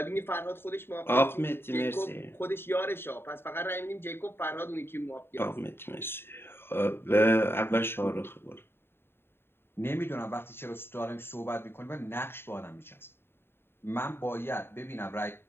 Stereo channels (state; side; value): late; right; 0.11 ms